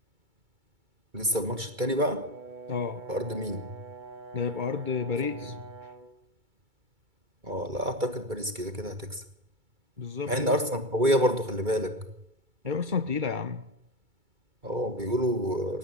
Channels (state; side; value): late; left; 2.3 ms